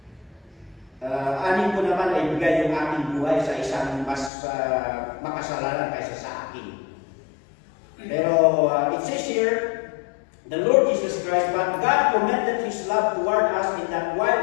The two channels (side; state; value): right; drops out; at 4.3 s